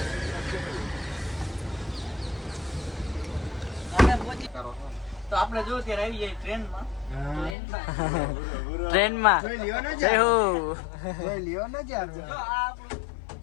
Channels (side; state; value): right; drops out; at 7.6 s